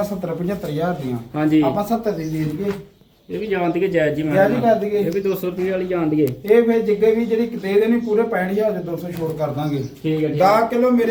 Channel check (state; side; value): identical; both; correlation 1.00